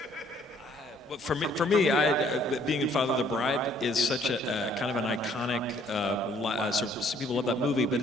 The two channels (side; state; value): both; normal; correlation 0.62